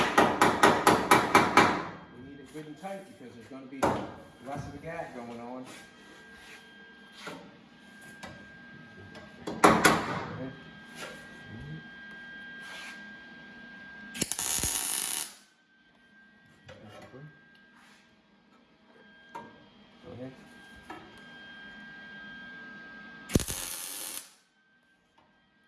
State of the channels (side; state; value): both; identical; correlation 1.00